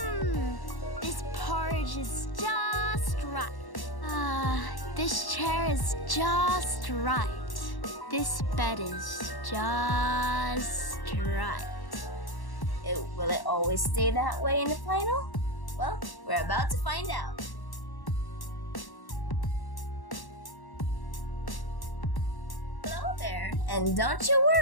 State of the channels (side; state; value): right; late; 1.1 ms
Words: This porridge is just right. This chair is just right. This bed is just right. Will it always stay that way in the final? Well, we're about to find out. Hello there, and don't you